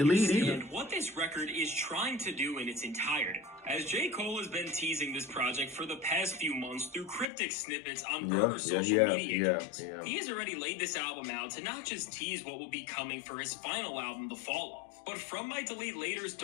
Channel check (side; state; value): right; drops out; at 7.2 s